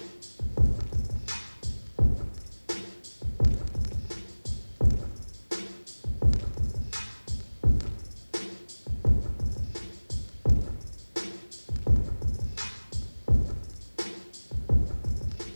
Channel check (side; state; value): both; inverted; correlation -1.00